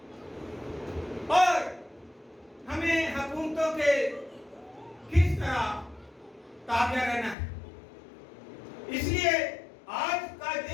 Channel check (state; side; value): drops out; right; at 7.4 s